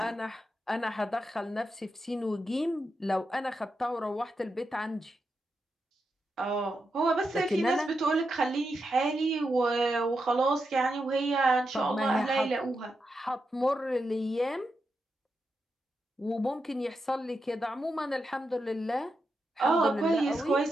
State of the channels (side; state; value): both; normal; correlation 0.86